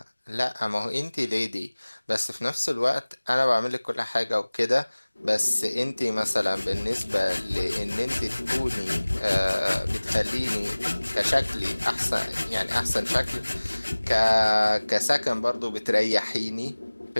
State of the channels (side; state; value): both; inverted; correlation -1.00